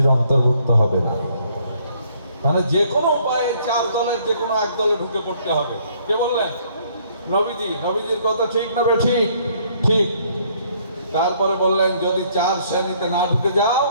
অন্তর্ভুক্ত হবে না। মানে যে কোনো উপায়ে চার দলের যে কোনো এক দলে ঢুকে পড়তে হবে। কে বললেন? নবীজি। নবীজির কথা ঠিক না বে ঠিক? ঠিক। তারপরে বললেন যদি চার শ্রেণীতে না ঢুকে যাও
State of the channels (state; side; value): inverted; both; correlation -0.65